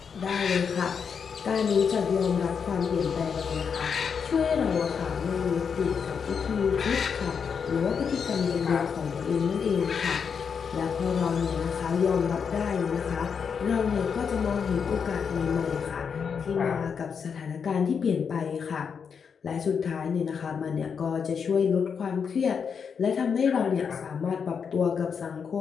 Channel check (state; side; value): quieter; right; 6.5 dB